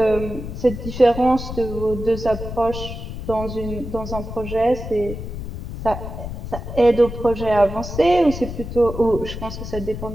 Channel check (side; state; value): left; noise; rumble, 8 dB below the sound